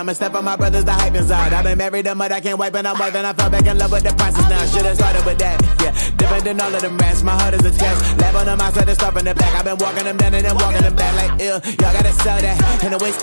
step on my brothers, the hype inside. I've been married them, but I can't wipe and I'm wiping. I fell back in love with the process now. Should've started with that, yeah. Different than all of them rats, my heart is a test. Lab on them outside and start from the back. I've been walking them down and then walking them back like ill. Y'all gotta sell that, and the waist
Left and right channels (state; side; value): inverted; both; correlation -1.00